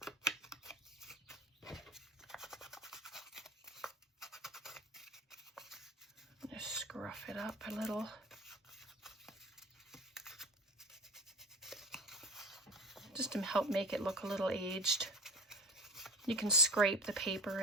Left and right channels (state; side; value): normal; both; correlation 0.32